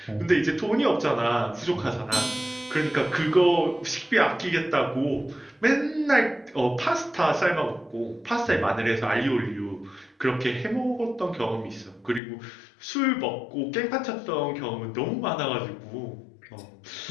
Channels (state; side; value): drops out; right; at 12.2 s